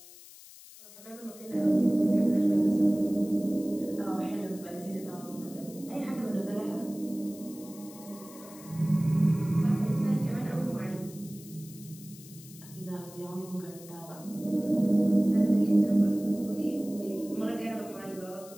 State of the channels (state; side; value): noise; left; hiss, 19 dB below the sound